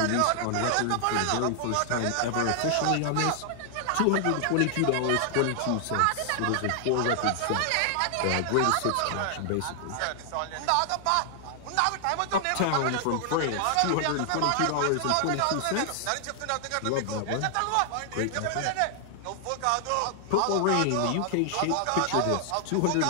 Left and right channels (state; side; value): different; both; correlation 0.00